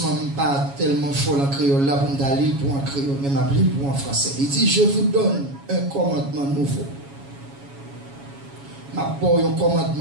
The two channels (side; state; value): left; late; 7.2 ms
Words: je ne suis pas tellement fort en créole là pour me lire pour en créole, mais je m'appelle pour en français. Il dit, je vous donne un commandement nouveau. Je m'appelle un